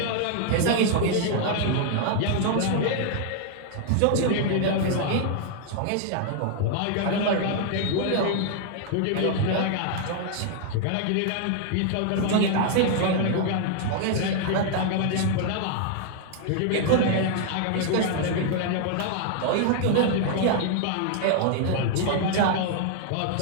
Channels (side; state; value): both; different; correlation 0.00